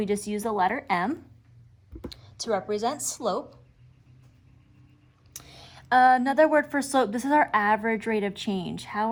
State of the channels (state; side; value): identical; both; correlation 1.00